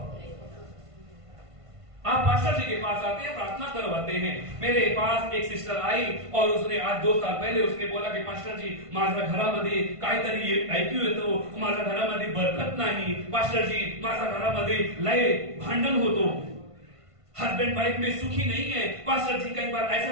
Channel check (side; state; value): left; late; 1.5 ms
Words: आप पास्टर जी के पास आते हैं, प्रार्थना करवाते हैं। मेरे पास एक सिस्टर आई और उसने आज 2 साल पहले उसने बोला कि पास्टर जी, माझ्या घरामध्ये काहीतरी ऐकू येतो, माझ्या घरामध्ये बरकत नाही। पास्टर जी, माझ्या घरामध्ये लय भांडण होतो, हस्बैंड वाइफ में सुखी नहीं है। पास्टर जी, कई बार